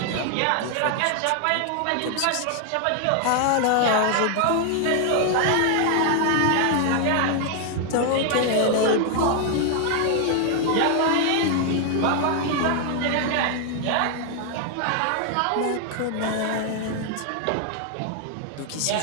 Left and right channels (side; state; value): both; different; correlation 0.00